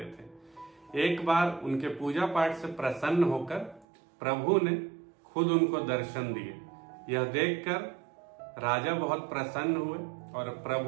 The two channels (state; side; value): drops out; left; at 3.9 s